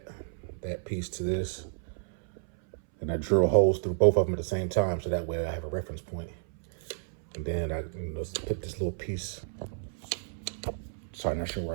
piece to this, and I drill holes through both of them at the same time, so that way I have a reference point. And then I put this little piece. Sorry, not sure where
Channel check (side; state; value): left; silent; 57 dB below the other